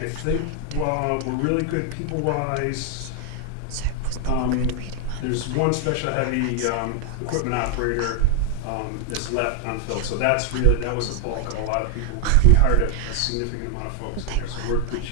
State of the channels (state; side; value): different; both; correlation 0.01